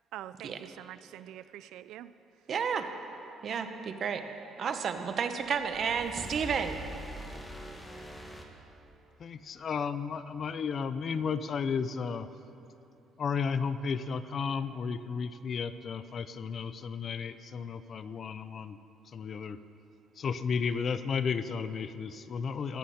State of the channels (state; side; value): normal; both; correlation 0.73